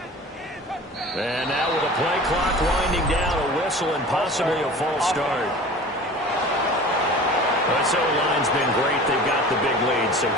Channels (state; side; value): normal; both; correlation 0.40